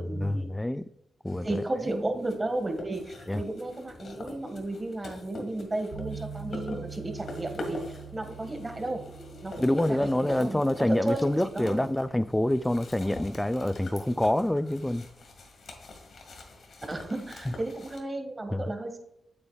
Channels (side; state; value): both; normal; correlation 0.96